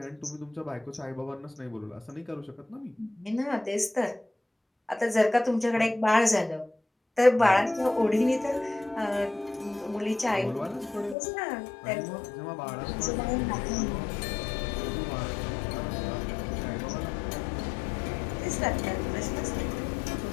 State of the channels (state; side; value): drops out; right; at 11.2 s